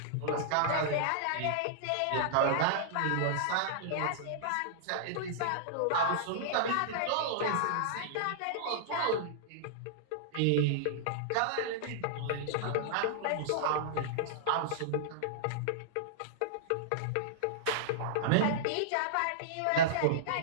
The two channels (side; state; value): both; different; correlation -0.02